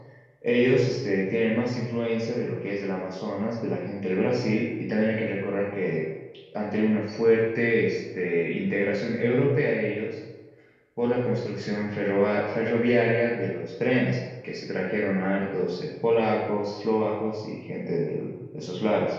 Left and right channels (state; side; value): identical; both; correlation 1.00